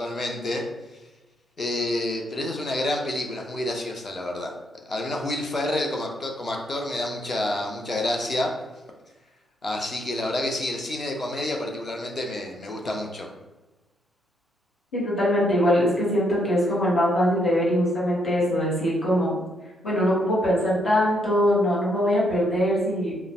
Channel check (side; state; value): both; normal; correlation 0.74